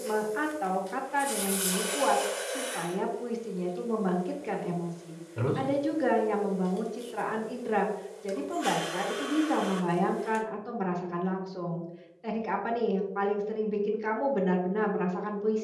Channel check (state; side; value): identical; both; correlation 1.00